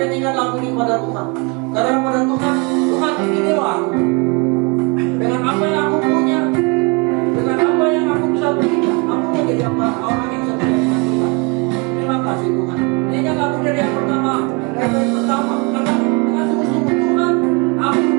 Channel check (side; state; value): left; quieter; 29.8 dB